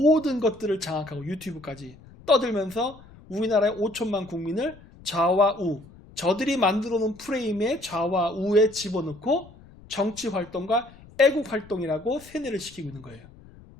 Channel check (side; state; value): left; noise; rumble, 22 dB below the sound